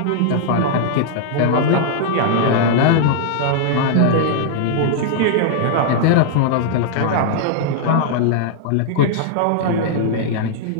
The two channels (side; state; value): both; different; correlation -0.01